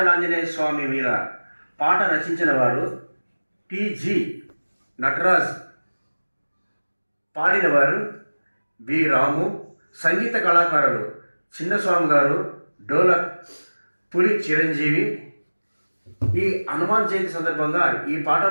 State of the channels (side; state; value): both; inverted; correlation -1.00